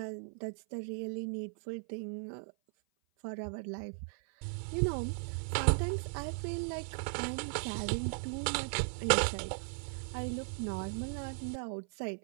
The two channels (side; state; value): left; silent; 53 dB below the other